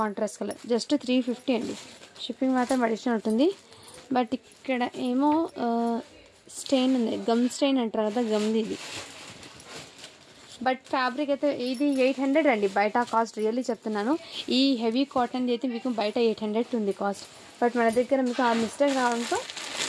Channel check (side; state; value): both; identical; correlation 1.00